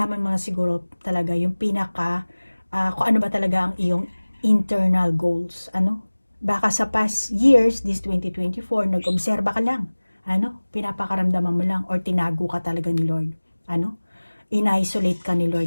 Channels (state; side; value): inverted; both; correlation -1.00